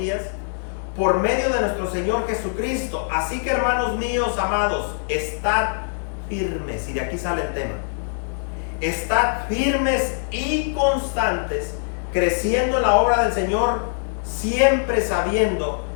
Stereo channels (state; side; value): silent; right; digital silence